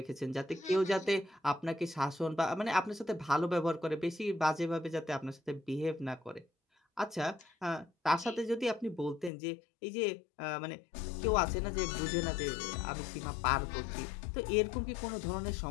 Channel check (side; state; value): right; drops out; at 9.3 s